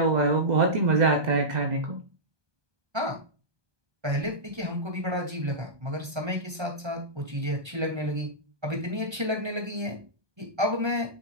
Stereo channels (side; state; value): left; late; 1.3 ms